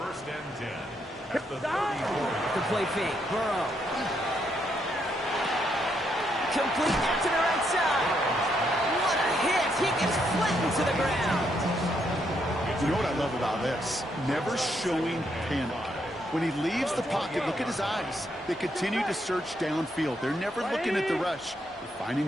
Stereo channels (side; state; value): both; normal; correlation 0.76